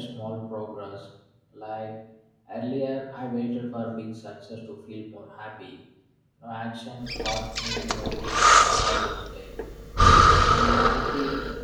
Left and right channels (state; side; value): identical; both; correlation 1.00